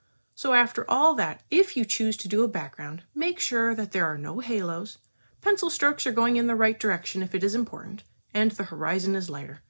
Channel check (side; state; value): both; inverted; correlation -1.00